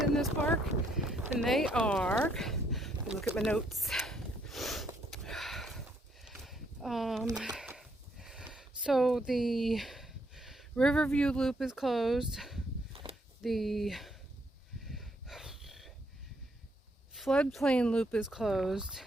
this park, and they are, let me look at my notes. So the Riverview Loop is closed. The Floodplain Loop is closed,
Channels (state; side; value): normal; both; correlation 0.72